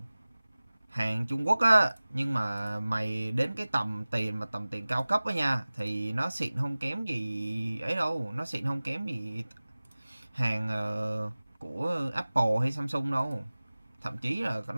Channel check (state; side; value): inverted; both; correlation -0.99